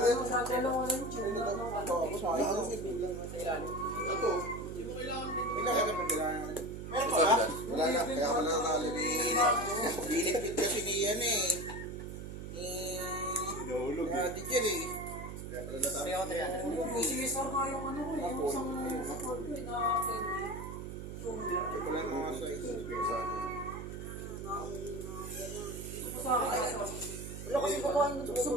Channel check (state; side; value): noise; right; hum, 9 dB below the sound